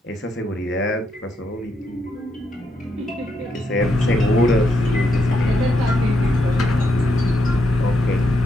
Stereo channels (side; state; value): both; normal; correlation 0.80